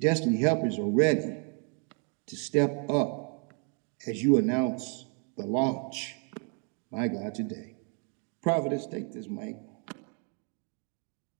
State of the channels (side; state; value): left; quieter; 39.3 dB